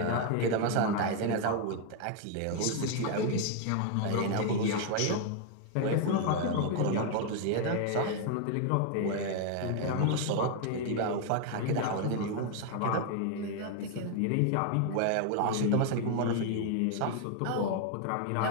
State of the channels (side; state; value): both; different; correlation 0.00